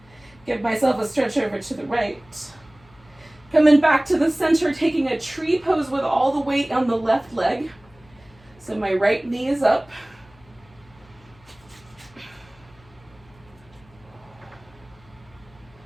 Give myself a stretch over to the right. Coming back to the center, taking a tree pose with all the weight on the left leg. So my right knee is up.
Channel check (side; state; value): left; noise; hum, 27 dB below the sound